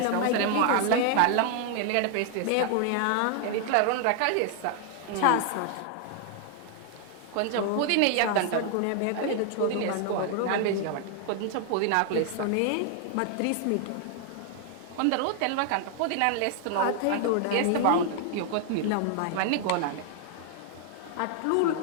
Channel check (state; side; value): different; both; correlation 0.00